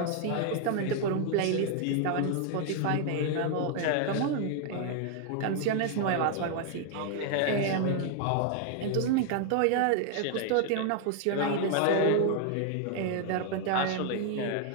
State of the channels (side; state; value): both; different; correlation 0.00